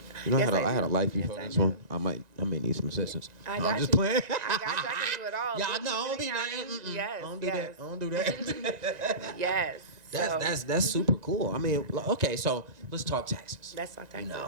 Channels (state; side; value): late; left; 1.9 ms